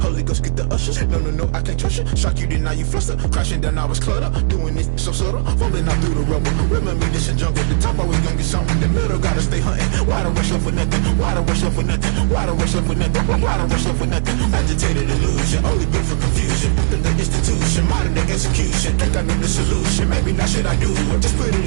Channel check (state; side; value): silent; left; digital silence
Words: Ghost get the ushers. No, I can't trust you. Shock you, then now you fluster. Crashing down, I was clutter. Doing this so subtle, fumbling out through the rubble. Remember this in jungle, the top always gonna get something. The middle gotta stay hunting. Why the rush left for nothing? Why the rush left for nothing? Why the rush left for nothing? Why the rush left for nothing? Agitated illusion, only built for confusion. The institution, modern day execution. Think I know the solution, maybe not should I do it? Just put